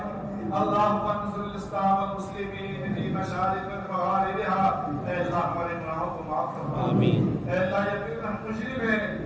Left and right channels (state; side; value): identical; both; correlation 1.00